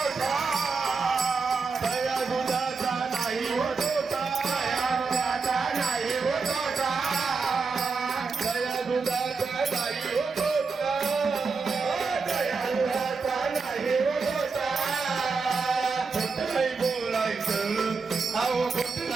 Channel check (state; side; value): quieter; left; 4.6 dB